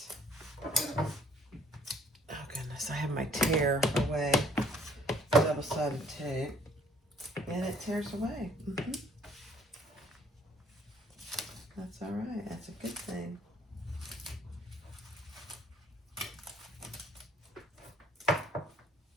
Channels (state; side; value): normal; both; correlation 0.60